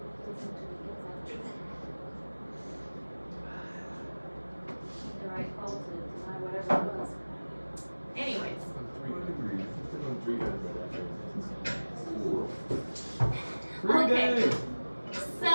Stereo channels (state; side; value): inverted; both; correlation -1.00